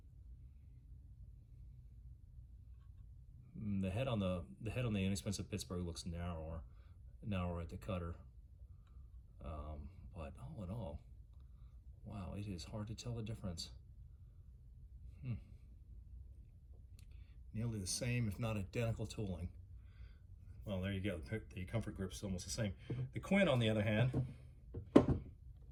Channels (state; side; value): identical; both; correlation 1.00